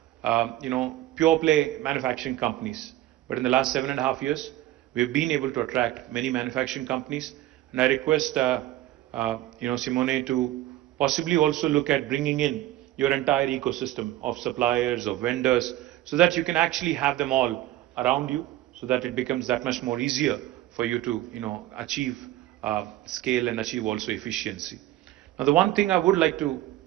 pure play manufacturing companies. But in the last 7.5 years, we've been able to attract many manufacturing companies. And I request, Simone, to possibly also look at bringing in your entire ecosystem of suppliers, of vendors, so that you can actually have them all around you, so that it becomes that much more easier for you to, achieve scale and achieve also efficiency. Now, the one thing I would like to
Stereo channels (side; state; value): left; quieter; 14.7 dB